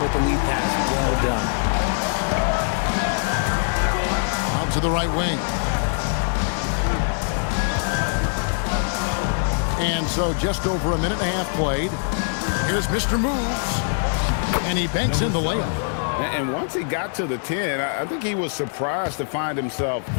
with the lead pass. Well done. to the right wing. And so just over a minute and a half played. Here's Mr. Moves. And he banks in the layup. And once he got to the 10, I think he was surprised to find himself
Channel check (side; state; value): right; silent; digital silence